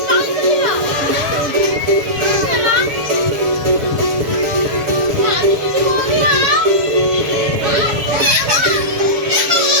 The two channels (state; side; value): late; left; 7.2 ms